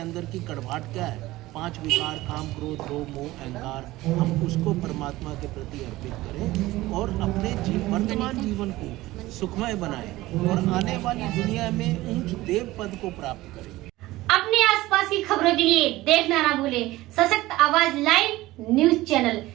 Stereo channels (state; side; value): quieter; left; 17.9 dB